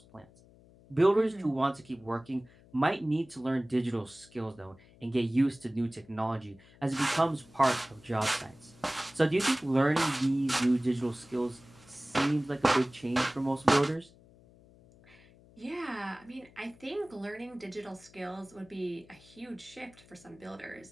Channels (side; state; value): left; noise; hum, 25 dB below the sound